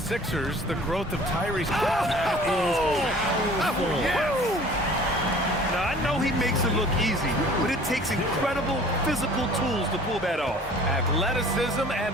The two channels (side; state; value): both; normal; correlation 0.49